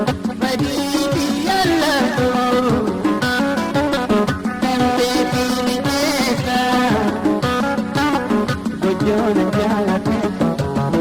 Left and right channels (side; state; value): both; identical; correlation 1.00